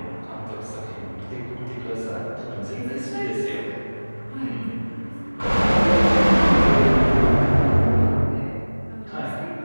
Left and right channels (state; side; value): inverted; both; correlation -1.00